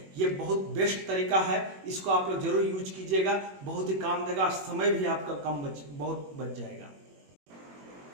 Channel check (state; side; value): late; left; 21 ms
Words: ये बहुत बेस्ट तरीका है, इसको आप लोग जरूर यूज कीजिएगा, बहुत ही काम देगा, समय भी आपका बहुत बच जाएगा।